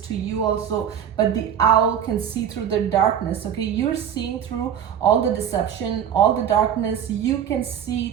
to you also, but the owl can see through the darkness, okay? You're seeing through all the deception, all the darkness. You can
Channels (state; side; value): quieter; left; 9.0 dB